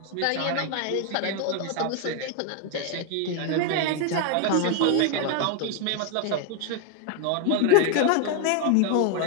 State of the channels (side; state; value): both; different; correlation 0.01